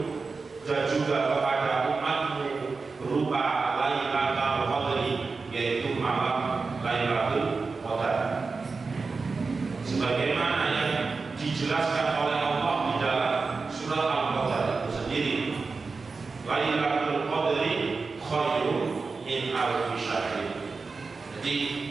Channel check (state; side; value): quieter; left; 4.3 dB